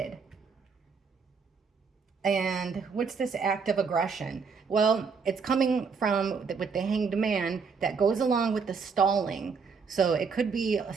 And what's this act of aggression? Well, it's coming from with the hanged man that goes along with the stalling. So it could be a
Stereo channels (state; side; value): quieter; left; 5.4 dB